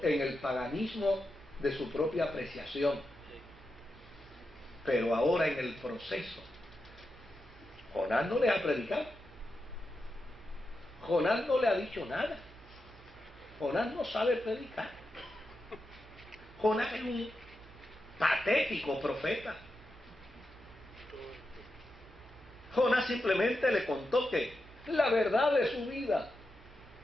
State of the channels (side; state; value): both; normal; correlation 0.88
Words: en el paganismo de su propia apreciación. Pero ahora, en el proceso, Jonás no le ha predicado. Jonás no le ha dicho nada. Jonás no sabe predicar. Jonás es un patético profeta. Jonás simplemente le contó que la verdad de su vida